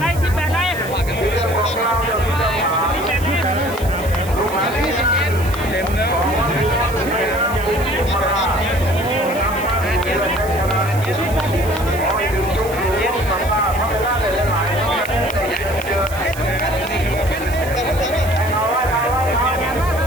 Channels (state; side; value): noise; right; hiss, 15 dB below the sound